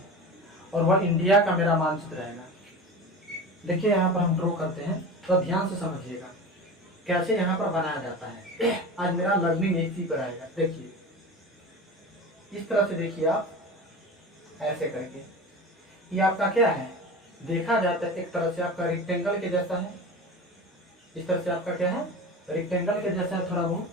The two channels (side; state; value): both; normal; correlation 0.31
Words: और वह इंडिया का मेरा मानचित्र रहेगा। देखिए यहाँ पर हम ड्रॉ करते हैं, तो ध्यान से समझिएगा कैसे यहाँ पर बनाया जाता है। आज मेरा लर्निंग इसी पर आएगा। देखिए इस तरह से, देखिए आप ऐसे करके, ये आपका क्या है, देखा जाता है एक तरह से आपका रेक्टेंगल के जैसा है। इस तरह से आपका क्या है, रेक्टेंगल के जैसा है, थोड़ा बहुत